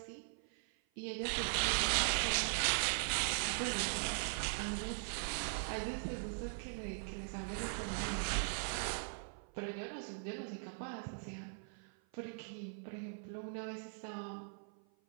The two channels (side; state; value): left; silent; 51 dB below the other